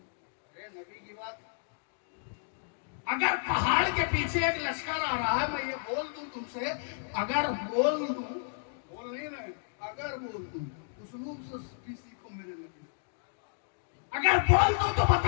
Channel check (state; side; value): silent; right; digital silence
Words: نبی کی بات. اگر پہاڑ کے پیچھے ایک لشکر آ رہا ہے، میں یہ بول دوں تم سے، اگر بول دوں، بول نہیں رہے، اگر بول دوں، اسلوب سے بھی سیکھو میرے نبی. اگر بول دوں تو